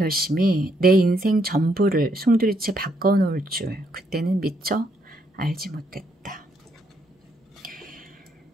내 인생 전부를 송두리째 바꿔놓을 줄 그때는 미처 알지 못했다.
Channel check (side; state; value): both; normal; correlation 0.74